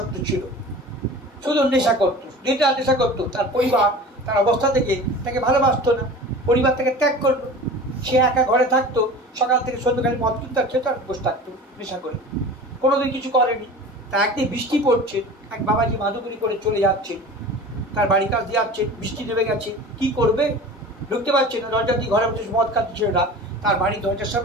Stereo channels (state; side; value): normal; both; correlation 0.38